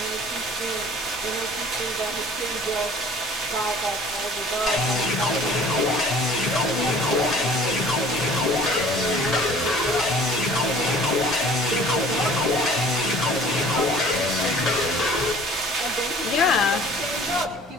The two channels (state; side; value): normal; both; correlation 0.49